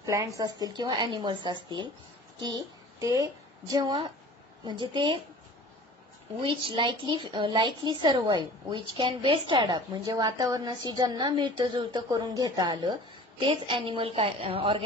plants असतील किंवा animals असतील की ते जेव्हा म्हणजे ते which likely survive, which can best adapt, म्हणजे वातावरणाशी ज्यांना मिळतं जुळतं करून घेता आलं तेच अॅनिमल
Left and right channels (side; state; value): both; normal; correlation 0.43